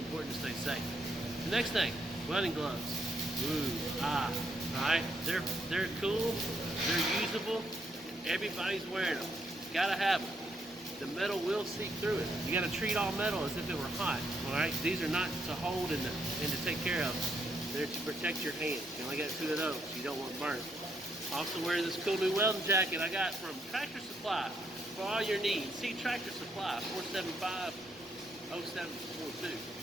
to stay safe. The next thing, welding gloves. Alright? They're cool, they're usable, everybody's wearing them. Gotta have them. The metal will seep through it. You gotta treat all metal as if it were hot. Alright? These are not to hold and to take care of. They're to protect your hand. You only got 2 of those. You don't want burnt. Also wearing this cool new welding jacket I got from Tractor Supply for all your needs. See Tractor Supply, 475-0742,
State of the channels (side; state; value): both; normal; correlation 0.74